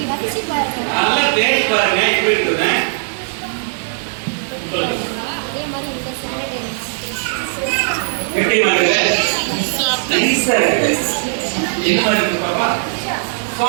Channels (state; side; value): silent; left; digital silence